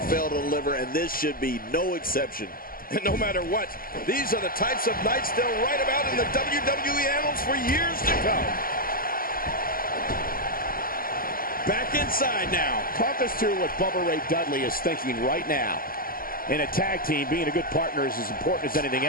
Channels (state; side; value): late; right; 0.42 ms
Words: fail to deliver, and this should be no exception. And no matter what, these are the types of nights they'll write about in the WWE annals for years to come. Back inside now. Talk us through what Bubba Ray Dudley is thinking right now. In a tag team, being a good partner is as important as anything